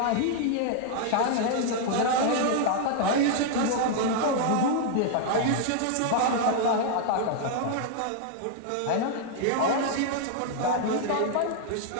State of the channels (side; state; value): both; different; correlation 0.00